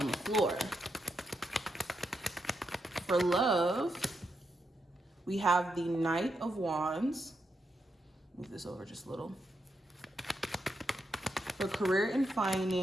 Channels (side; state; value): both; normal; correlation 0.83